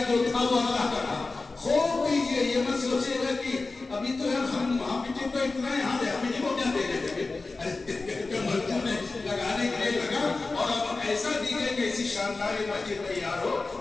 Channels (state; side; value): quieter; right; 3.7 dB